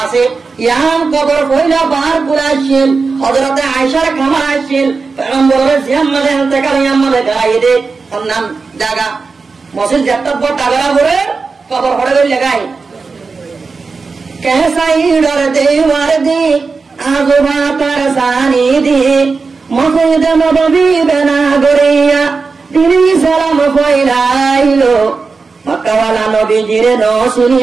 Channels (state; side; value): quieter; left; 4.5 dB